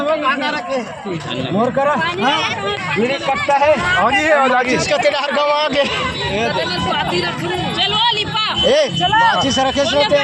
गाना रखे मोर करा मेरे कट्टा है आगे है और आगे इसका तेरा हर गांव आगे चलो लिपा ए माची से रखे सोते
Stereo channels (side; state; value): both; identical; correlation 1.00